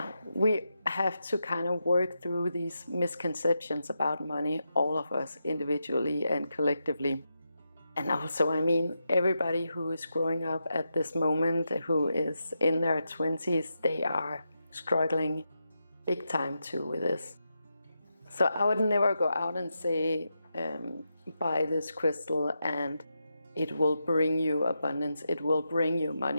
we have to kind of work through these misconceptions about money, all of us individually and collectively. And also, I mean, everybody who is growing up at this moment, who is in their 20s, they are struggling big time too with this. So I would never go out and say, buy this crystal and it will bring you abundance, it will bring you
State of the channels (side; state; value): both; inverted; correlation -0.86